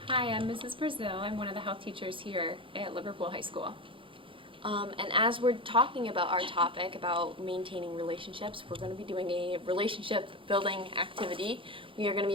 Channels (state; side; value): late; left; 0.25 ms